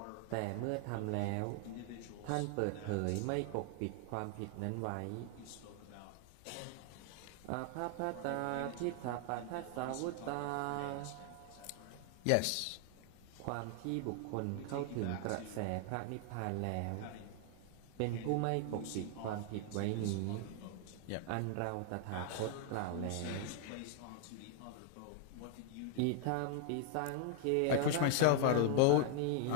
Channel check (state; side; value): different; both; correlation 0.00